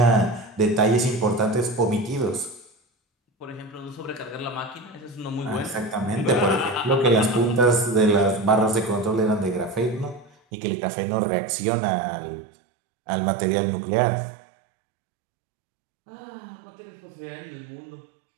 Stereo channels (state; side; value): drops out; left; at 10.4 s